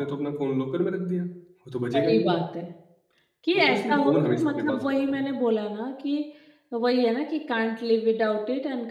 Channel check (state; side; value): identical; both; correlation 1.00